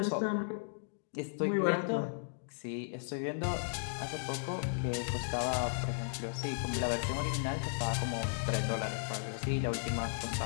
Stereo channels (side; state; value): right; silent; digital silence